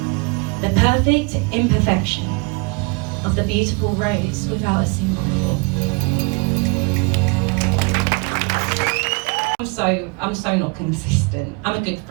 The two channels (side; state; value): left; quieter; 30.4 dB